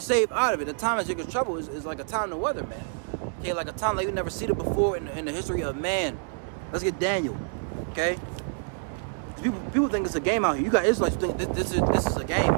out of it. The time of Jacob's trouble is like a time to weather, man. Okay, like a time like we've never seen it before in the history of man. Let's get Daniel. Okay, people think it's a game out here. You got Israelites think this is a game,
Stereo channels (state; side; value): silent; left; digital silence